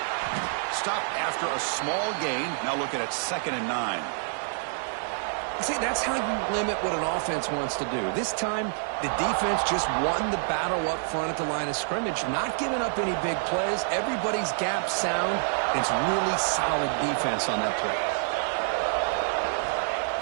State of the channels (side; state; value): left; silent; 60 dB below the other